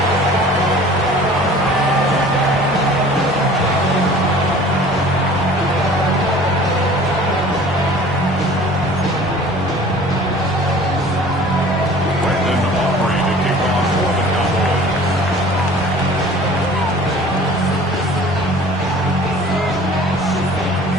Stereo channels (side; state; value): both; normal; correlation 0.47